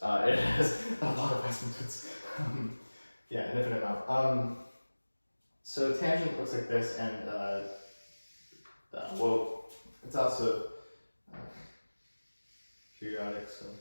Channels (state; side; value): inverted; both; correlation -1.00